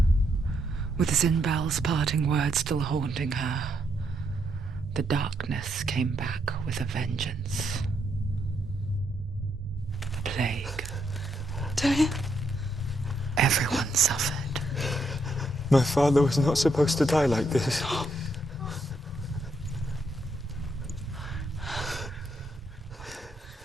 with Zinbal's parting words still haunting her, the darkness came back with a vengeance. The plague. Tameem? Everyone suffered. My father was not supposed to die like this.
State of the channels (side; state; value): both; normal; correlation 0.77